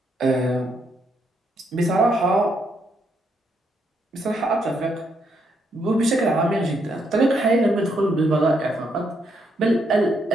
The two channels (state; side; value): normal; both; correlation 0.76